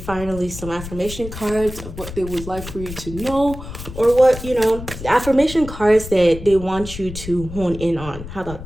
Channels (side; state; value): left; noise; rumble, 11 dB below the sound